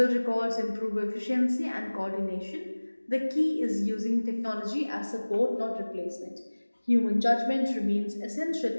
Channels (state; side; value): inverted; both; correlation -1.00